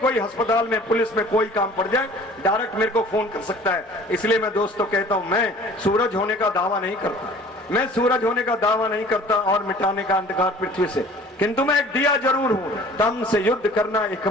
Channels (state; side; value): normal; both; correlation 0.48